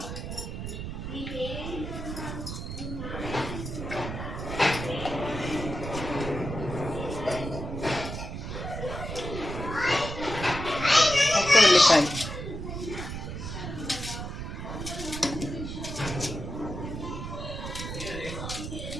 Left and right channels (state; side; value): noise; right; rumble, 6 dB below the sound